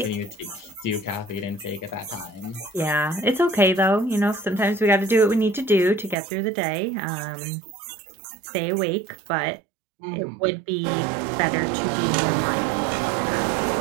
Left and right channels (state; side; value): drops out; left; at 6.2 s